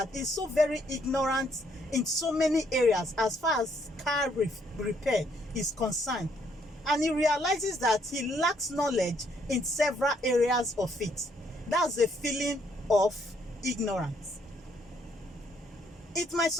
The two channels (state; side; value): normal; both; correlation 0.70